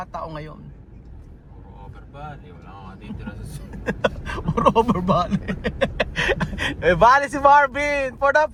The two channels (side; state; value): both; identical; correlation 1.00